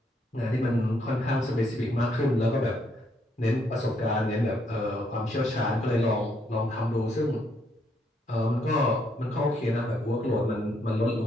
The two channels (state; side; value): normal; both; correlation 0.73